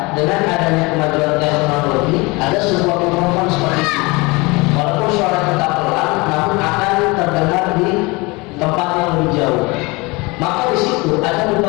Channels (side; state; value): right; quieter; 25.2 dB